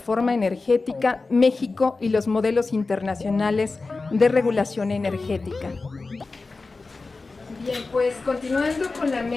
energética, México y los modelos internacionales de regulación energética. Bien, pues continuando con la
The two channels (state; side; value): quieter; right; 3.8 dB